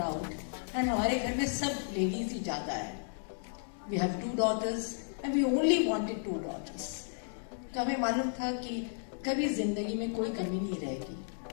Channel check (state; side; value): silent; right; digital silence